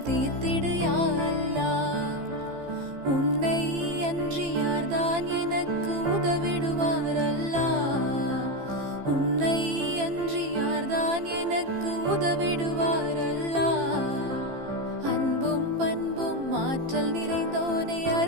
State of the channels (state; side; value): late; left; 15 ms